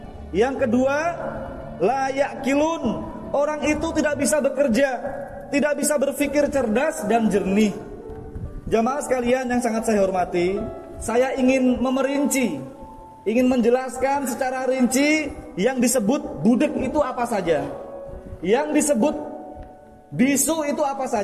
Yang kedua, la ya'qilun, orang itu tidak bisa bekerja, tidak bisa berpikir cerdas dan jernih. Jamaah sekalian yang sangat saya hormati, saya ingin memerinci, ingin menjelaskan secara rinci yang disebut budek itu apa saja, yang disebut bisu itu apa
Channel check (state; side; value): identical; both; correlation 1.00